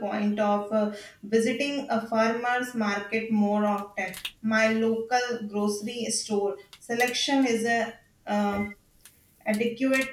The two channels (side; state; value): both; identical; correlation 1.00